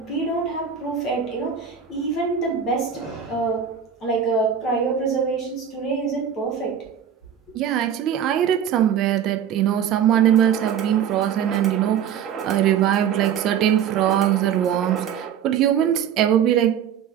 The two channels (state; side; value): quieter; left; 8.5 dB